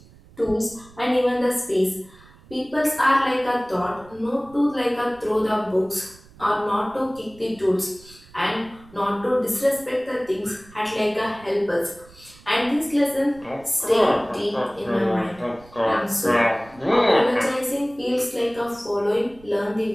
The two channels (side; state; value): right; noise; rumble, 24 dB below the sound